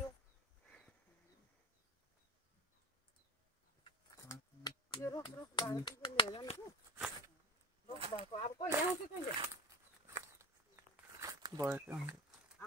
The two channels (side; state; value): both; normal; correlation 0.25